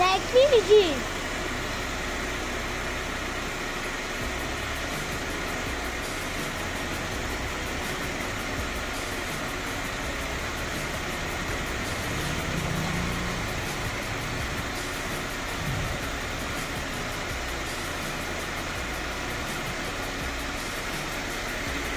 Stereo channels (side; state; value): both; identical; correlation 1.00